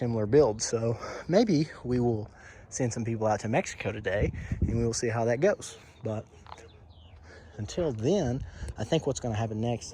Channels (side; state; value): both; identical; correlation 1.00